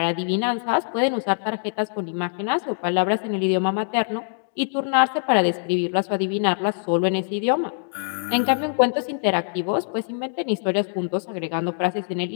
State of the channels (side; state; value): right; silent; digital silence